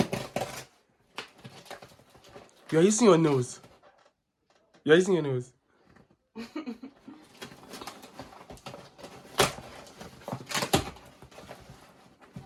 You're using your nose. You're using your nose.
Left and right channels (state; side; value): identical; both; correlation 1.00